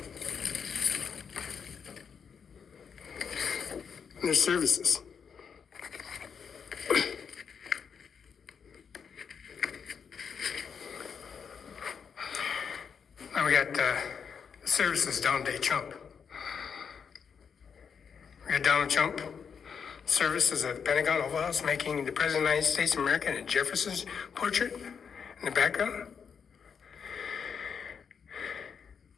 their services. Now we got services Donald J. Trump. We got Donald Trump services at the Pentagon Oval House making the President of the United States of America and Jefferson's portrait in the background.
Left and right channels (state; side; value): quieter; right; 6.7 dB